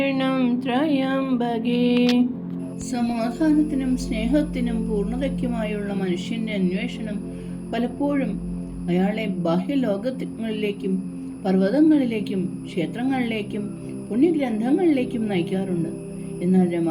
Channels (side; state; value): both; identical; correlation 1.00